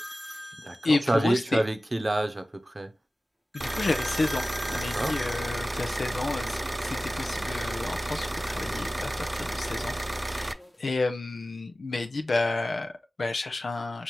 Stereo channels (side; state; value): both; normal; correlation 0.96